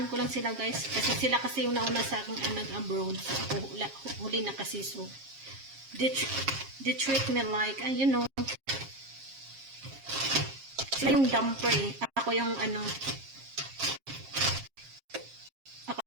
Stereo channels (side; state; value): left; late; 7.4 ms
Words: ko lang sila guys. Kasi sila kasi yung nauna sa aking abroad. So ako huli na kasi. So, they treat me like, sila yung dumper eh. Ako yung